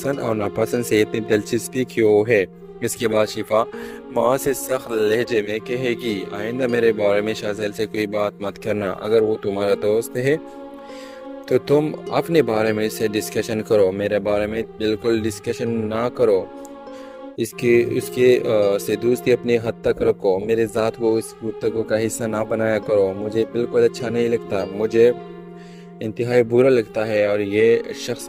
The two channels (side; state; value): both; identical; correlation 1.00